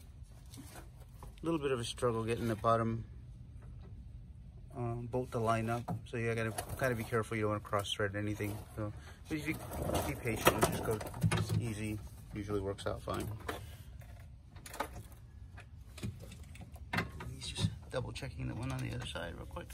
A little bit of a struggle getting the bottom bolt to line up, so you gotta be careful. You don't want to cross thread anything. So, but if you be patient and just go easy, usually works out fine. He's just double checking the one on the other side real quick.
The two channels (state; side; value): identical; both; correlation 1.00